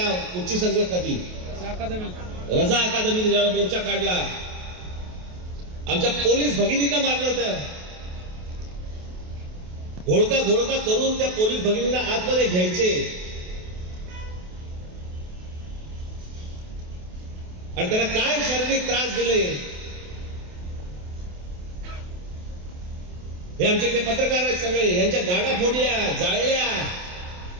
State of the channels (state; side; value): late; left; 28 ms